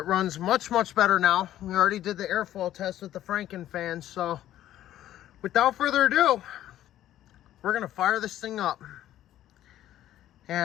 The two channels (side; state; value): right; quieter; 12.7 dB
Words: runs much better now. We already did the airflow test with the Franken fan, so without further ado, we're going to fire this thing up.